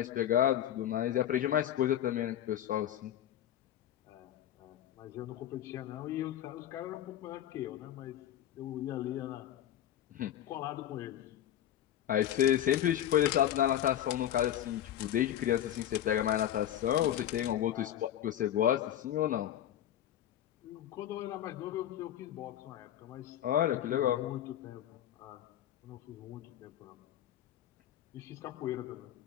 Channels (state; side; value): quieter; right; 11.4 dB